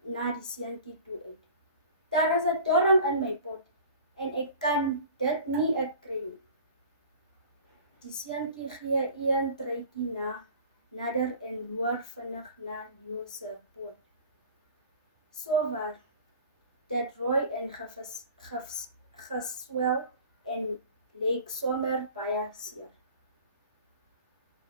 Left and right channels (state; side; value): inverted; both; correlation -0.43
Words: na die seentjie toe uit. "Daar is 'n doring in my pot, en ek kan dit nie uitkry nie." Die seentjie gee een treytjie nader en loer vinnig na leeu se poot. Sowaar, dit rooi en geswel en lyk sommer baie seer.